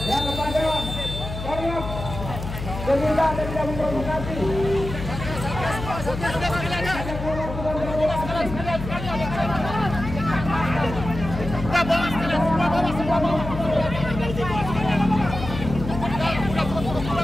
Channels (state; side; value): noise; left; hum, 7 dB below the sound